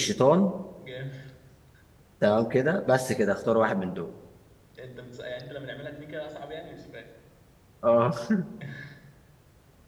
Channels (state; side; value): identical; both; correlation 1.00